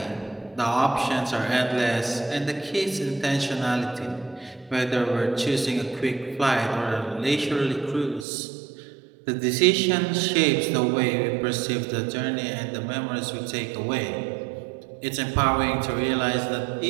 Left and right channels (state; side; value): drops out; left; at 8.2 s